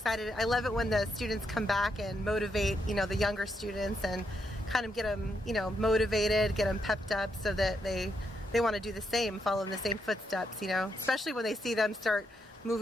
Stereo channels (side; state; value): both; normal; correlation 0.80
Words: I love it when the students come back and motivate, the younger students and kind of get them, motivated, get them pepped up so that they want to do the same, follow in the same footsteps, especially when they see them start